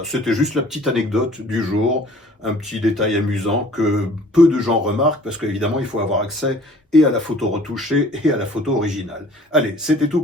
c'était juste la petite anecdote du jour, un petit détail amusant que peu de gens remarquent, parce qu'évidemment, il faut avoir accès et à la photo retouchée et à la photo originale. Allez, c'était tout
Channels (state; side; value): normal; both; correlation 0.52